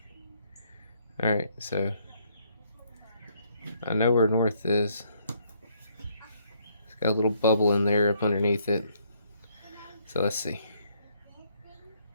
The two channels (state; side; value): inverted; both; correlation -0.69